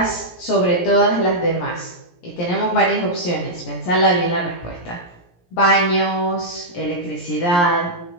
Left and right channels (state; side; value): late; right; 17 ms